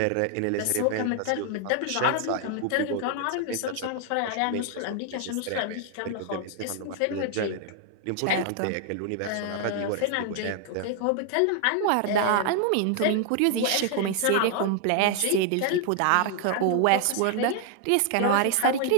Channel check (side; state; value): both; different; correlation 0.00